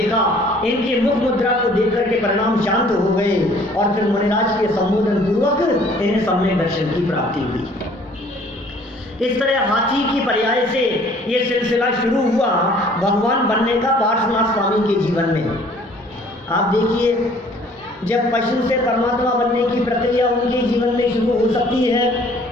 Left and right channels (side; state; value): both; normal; correlation 0.55